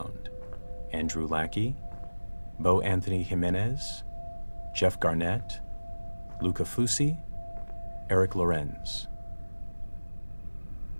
Andrew Lackey, Bo Anthony Jimenez, Jeff Garnett, Luca Fusi, Eric Lorenz.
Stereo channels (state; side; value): inverted; both; correlation -1.00